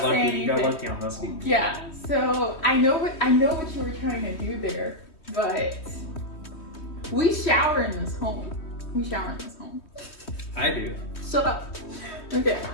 say lucky. anything. You got lucky on this one. Yeah. So I know what you were trying to do there, but we shower in this home. I do. Shut up. Okay.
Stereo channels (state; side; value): late; right; 3.2 ms